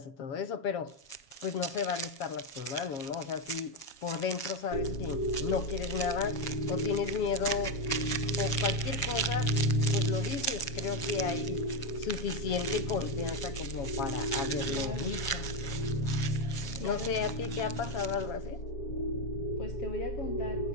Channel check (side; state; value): right; late; 7.3 ms